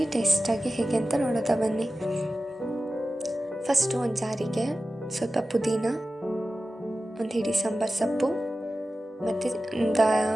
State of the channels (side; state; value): both; normal; correlation 0.95